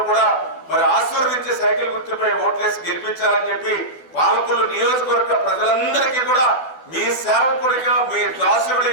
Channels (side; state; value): right; late; 12 ms